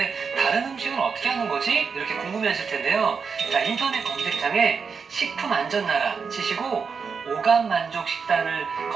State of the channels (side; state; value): left; quieter; 5.7 dB